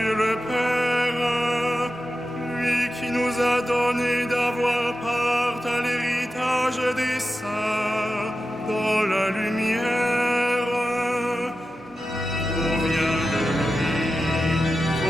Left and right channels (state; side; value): normal; both; correlation 0.92